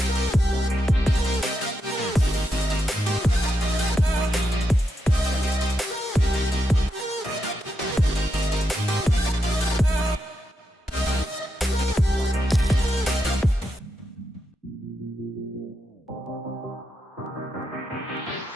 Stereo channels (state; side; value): normal; both; correlation 0.84